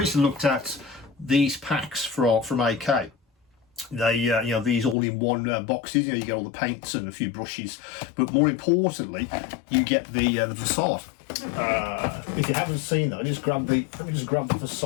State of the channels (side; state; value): right; drops out; at 5.0 s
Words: looked at these packs from AK. They these all-in-one boxes. You get all the paints and a few brushes, but more importantly, you get the facade. If you haven't seen that, let me just grab the